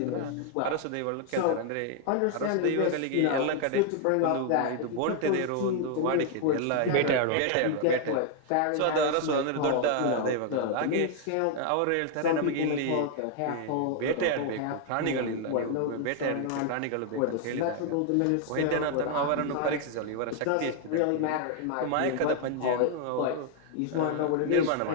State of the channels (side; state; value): both; different; correlation 0.00